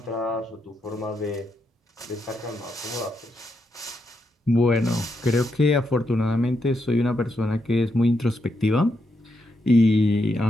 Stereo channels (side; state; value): both; normal; correlation 0.82